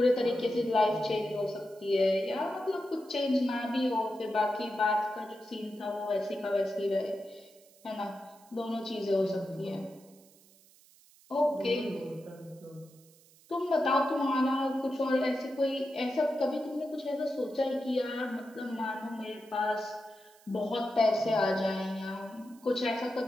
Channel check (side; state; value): right; noise; hiss, 27 dB below the sound